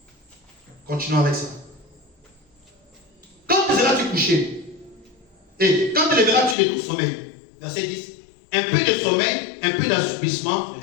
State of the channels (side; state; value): right; drops out; at 6.6 s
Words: Continuons avec ça. Quand seras-tu couché? Et quand te lèveras-tu de ton sommeil? Verset 10. Un peu de sommeil, un peu d'assoupissement,